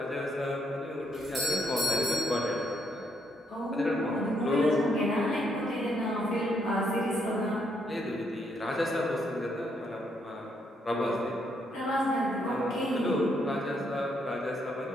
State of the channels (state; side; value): normal; both; correlation 0.74